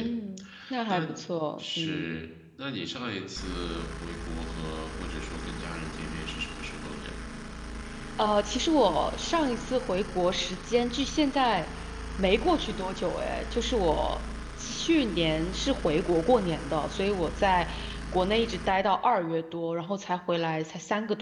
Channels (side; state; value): both; identical; correlation 1.00